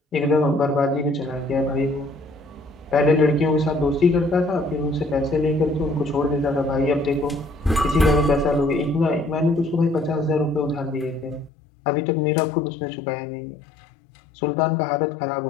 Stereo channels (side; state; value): right; drops out; at 11.5 s